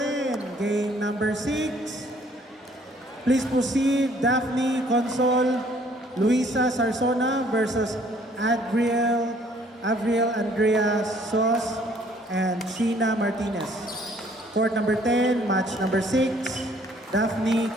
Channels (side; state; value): both; normal; correlation 0.60